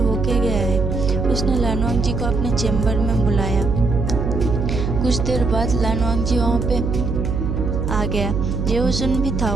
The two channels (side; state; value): right; noise; hum, 2 dB below the sound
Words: गया है। उसने लानवांग जी को अपने चैम्बर में बुलाया। कुछ देर बाद लानवांग जी वहाँ पे आ गया। जेओजुन भी था